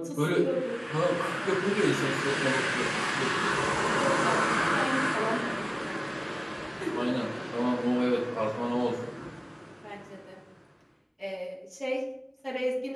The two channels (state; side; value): identical; both; correlation 1.00